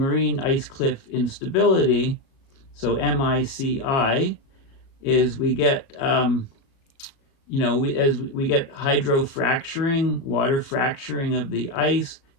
ice cliff instability, so MICI, is we get as we get hydrofracturing, water fracturing of the ice,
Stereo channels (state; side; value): late; right; 36 ms